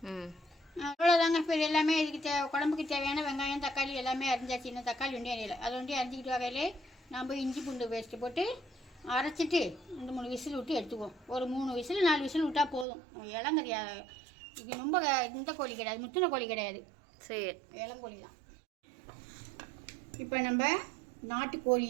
அவ்வளோதாங்க. இப்போ எல்லாமே இதுக்கு குழம்புக்கு தேவையான வெங்காயம் தக்காளி எல்லாமே அரிஞ்சாச்சு. இன்னும் தக்காளி ஒன்றே அரியலை, அதை ஒன்றே அரிஞ்சிக்கிட்டு வகையிலே நம்ம இஞ்சி பூண்டு பேஸ்ட்டு போட்டு அரைச்சிட்டு 2-3 விசில் விட்டு எடுத்துக்குவோம். ஒரு 3 விசில் 4 விசில் விட்டால் போதும். இளங்கறியா இது, ரொம்ப இந்த கோழி கிடையாது, முத்தின கோழி கிடையாது, சரி, இளங்கோழி தான். இப்போ நம்ம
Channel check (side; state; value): left; drops out; at 12.9 s